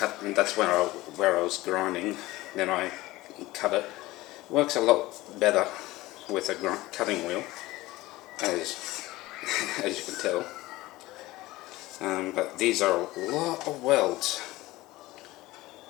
and that's where I was grinding. Then I cut it. It works a lot better with a cutting wheel, as you can tell. But these are a lot of welds.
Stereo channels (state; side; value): quieter; right; 18.7 dB